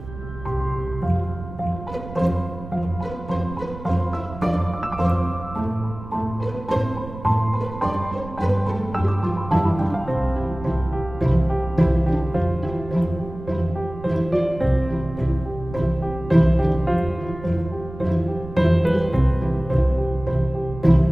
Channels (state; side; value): noise; right; rumble, 13 dB below the sound